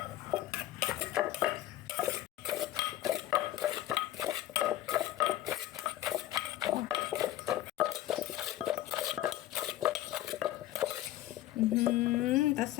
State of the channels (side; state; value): right; quieter; 14.1 dB